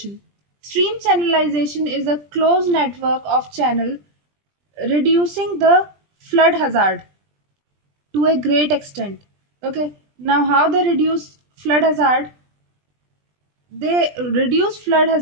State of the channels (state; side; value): late; left; 20 ms